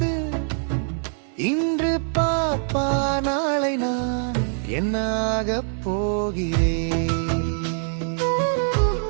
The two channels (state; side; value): silent; left; digital silence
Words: இன்று பாப்பா நாளை நான் என்னாக போகிறேன்.